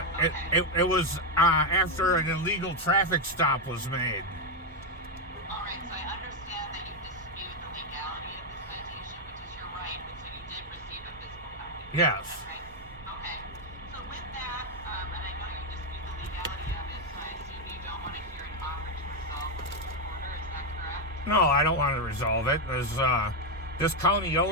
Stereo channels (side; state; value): both; normal; correlation 0.05